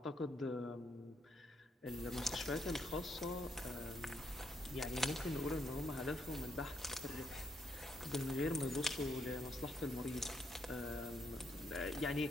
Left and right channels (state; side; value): normal; both; correlation 0.75